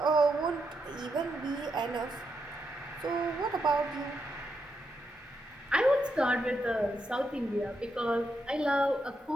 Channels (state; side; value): normal; both; correlation 0.82